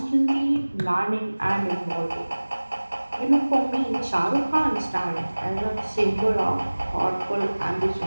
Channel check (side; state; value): both; inverted; correlation -1.00